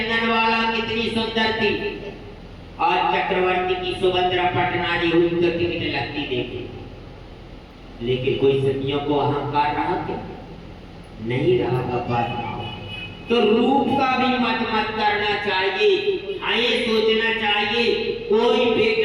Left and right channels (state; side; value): identical; both; correlation 1.00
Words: वाला कितनी सुंदर थी। आज चक्रवर्ती की सुभद्रा पटनारी हुई तो टिकट लगती देखी, लेकिन कोई सतियों को अहंकार रहा क्या? नहीं रहा बाबा। तो रूप का भी मत करना चाहिए। हाँ, ये सोचना चाहिए कोई